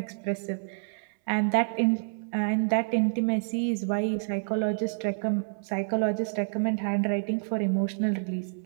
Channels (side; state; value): left; silent; 59 dB below the other